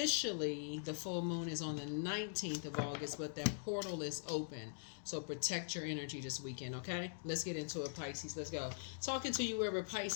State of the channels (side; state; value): right; silent; digital silence